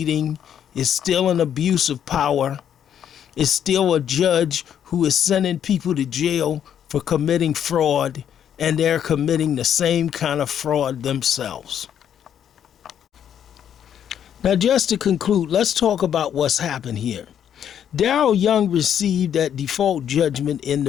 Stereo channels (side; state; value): right; quieter; 9.3 dB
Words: it's still an abuse of power. It's still a judge who is sending people to jail for committing fraud, and they're committing the same kind of fraud themselves. Now, just to conclude, let's talk about what's happened here. Daryl Young received that default judgment in the